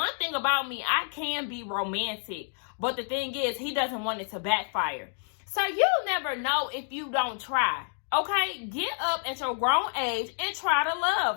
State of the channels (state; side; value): silent; right; digital silence